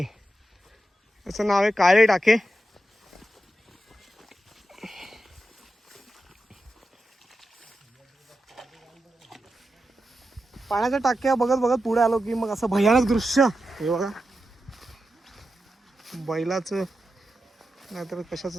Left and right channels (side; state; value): both; normal; correlation 0.89